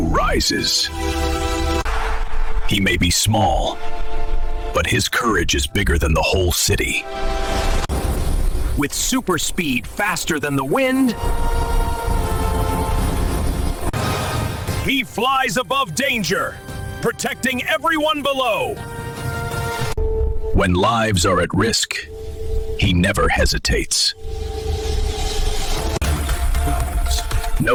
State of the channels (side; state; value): both; identical; correlation 1.00